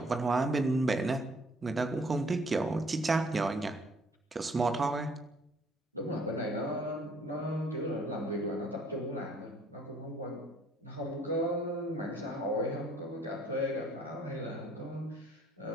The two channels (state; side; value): normal; both; correlation 0.61